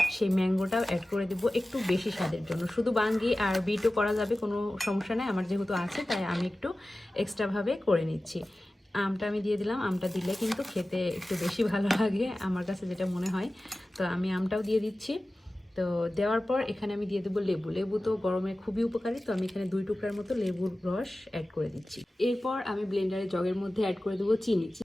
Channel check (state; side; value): normal; both; correlation 0.96